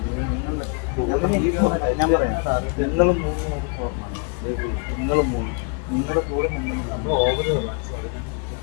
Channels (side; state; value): right; quieter; 36.4 dB